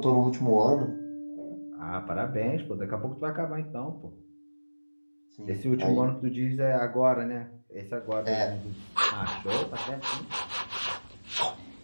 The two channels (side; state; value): both; inverted; correlation -1.00